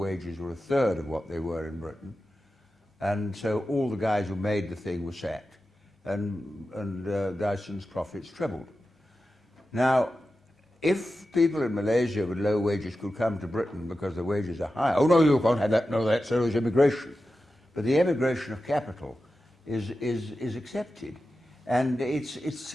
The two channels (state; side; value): normal; both; correlation 0.92